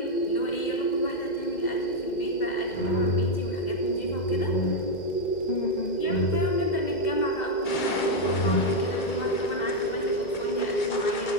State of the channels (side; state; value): right; late; 2.1 ms